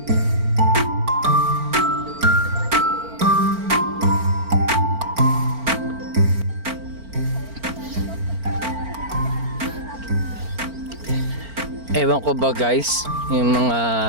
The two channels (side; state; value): left; late; 4.4 ms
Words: ko ba guys, yung mga